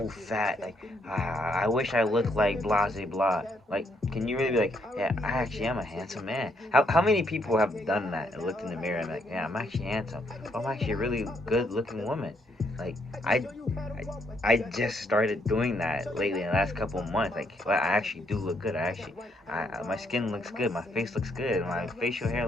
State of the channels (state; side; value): normal; both; correlation 0.73